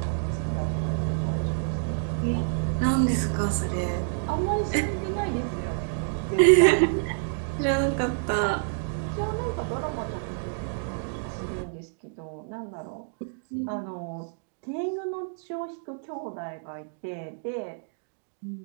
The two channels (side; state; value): left; silent; digital silence